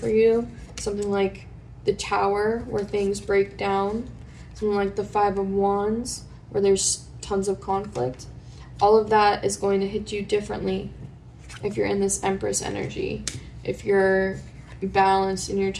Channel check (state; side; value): identical; both; correlation 1.00